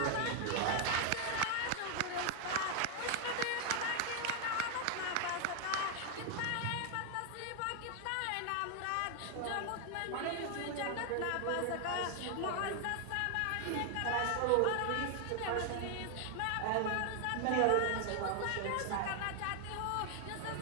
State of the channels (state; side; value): different; both; correlation 0.00